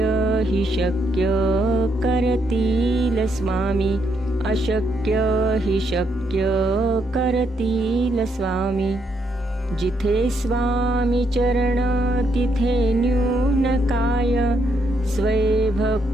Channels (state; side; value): normal; both; correlation 0.76